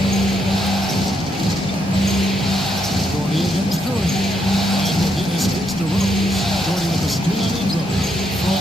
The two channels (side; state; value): both; normal; correlation 0.77